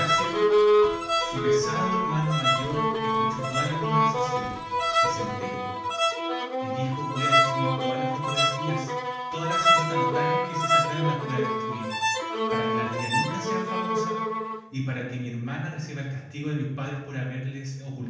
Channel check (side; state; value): both; identical; correlation 1.00